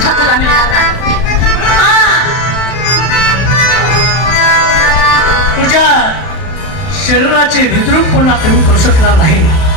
तुला मिळणार नाही. तुझ्या शरीराचे विद्रूप पुन्हा कमी करू शकला नाही.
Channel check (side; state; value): right; late; 32 ms